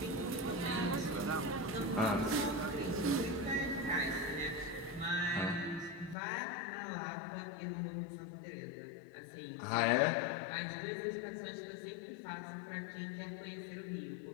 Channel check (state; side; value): drops out; right; at 6.2 s